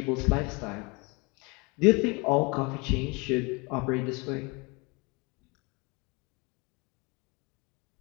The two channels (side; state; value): right; quieter; 28.4 dB